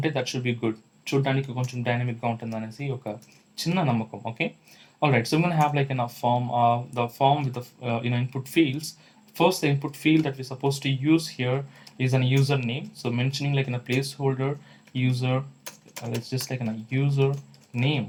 that should be good, చూడడానికి కొంచెం డైనమిక్గా ఉంటుంది అనేసి ఒక చిన్న నమ్మకం, ఓకే. ఆల్రైట్, సో మనం have like the form with the input fields. First, the input field that we're supposed to use here is a username. So mentioning like in a placeholder user, let's just like in a user name,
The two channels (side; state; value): both; identical; correlation 1.00